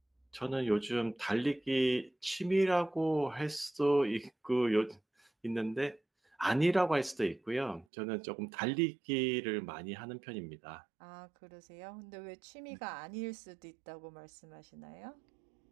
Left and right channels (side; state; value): left; drops out; at 7.9 s